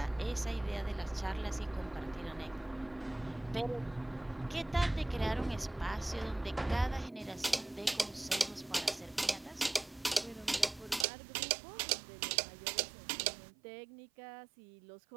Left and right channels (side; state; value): left; drops out; at 11.1 s